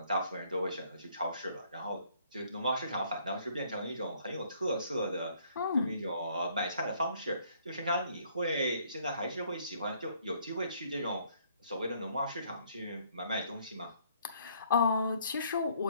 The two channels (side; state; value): both; inverted; correlation -0.63